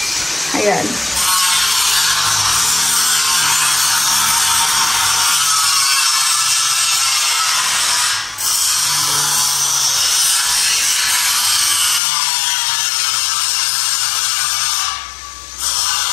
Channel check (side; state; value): right; drops out; at 12.0 s